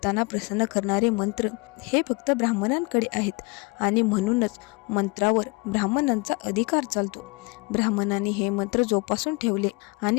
प्रसन्न करणारे मंत्र हे फक्त ब्राह्मणांकडे आहेत आणि म्हणूनच मंत्रावर ब्राह्मणांचा अधिकार चालतो. ब्राह्मणांनी हे मंत्र जोपासून ठेवले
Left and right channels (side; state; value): right; quieter; 27.8 dB